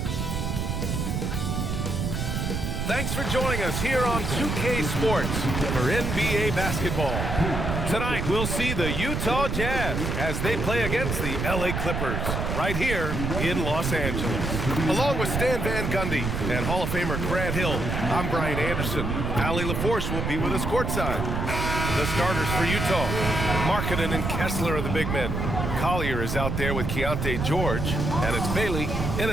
Thanks for joining us here on 2K Sports for NBA basketball. Tonight, we'll see the Utah Jazz as they play against the LA Clippers right here in Los Angeles. Along with Stan Van Gundy and Hall of Famer Grant Hill, I'm Brian Anderson. Ali LaForce will be with us courtside. The starters for Utah, Markkanen and Kessler are the big men. Collier is out there with Keontae George, and it's Bailey in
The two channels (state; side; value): noise; right; rumble, 2 dB below the sound